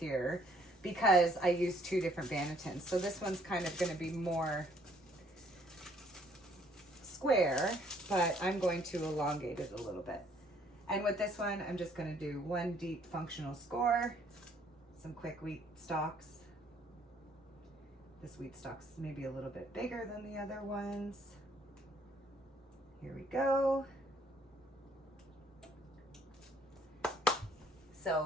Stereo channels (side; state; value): both; normal; correlation 0.64